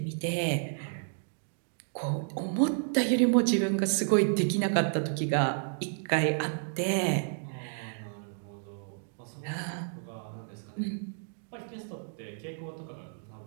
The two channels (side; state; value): left; silent; digital silence